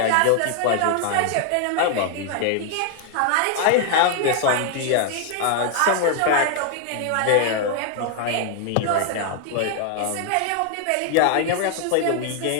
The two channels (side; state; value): both; different; correlation 0.00